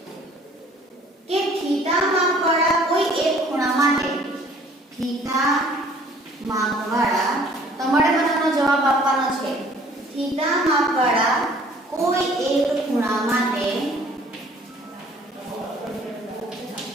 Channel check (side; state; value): both; normal; correlation 0.55